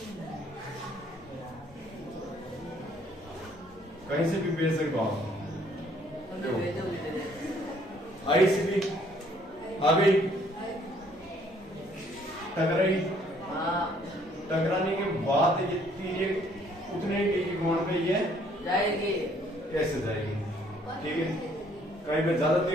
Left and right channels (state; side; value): normal; both; correlation 0.63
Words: कहीं से भी भेज सकते हो आप, आई से भी आ गई, टकराई, टकराने के बाद ये तिरक उतने के कोण पे ये जाएगी, कैसे जाएगी, ठीक है, कहीं पे ज्यादा